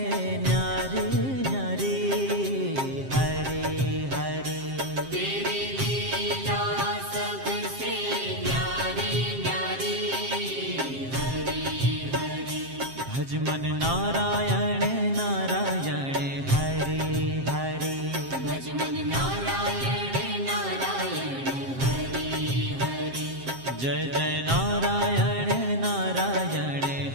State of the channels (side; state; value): left; late; 7.5 ms